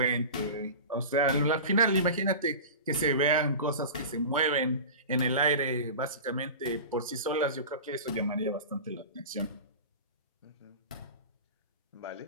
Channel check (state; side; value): inverted; both; correlation -0.32